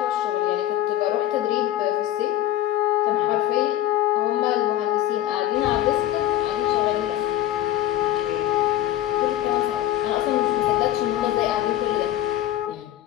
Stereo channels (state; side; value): quieter; right; 13.9 dB